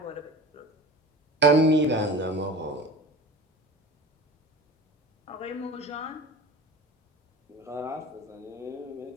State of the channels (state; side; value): normal; both; correlation 0.36